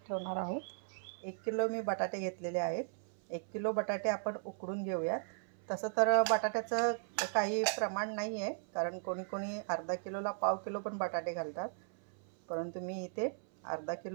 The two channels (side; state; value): left; silent; 53 dB below the other